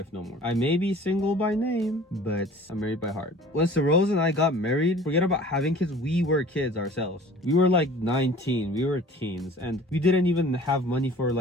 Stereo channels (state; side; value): normal; both; correlation 0.46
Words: no more. I may be single by name, but I'm married by heart. When Rose and I got married, forget about having kids, we were kids ourselves. We were like 19, we were teens, and we didn't even have money for